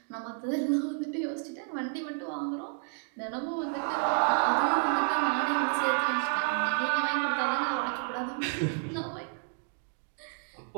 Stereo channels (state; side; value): silent; left; 57 dB below the other